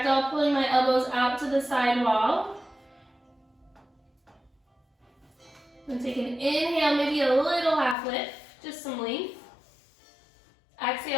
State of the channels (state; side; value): drops out; right; at 8.0 s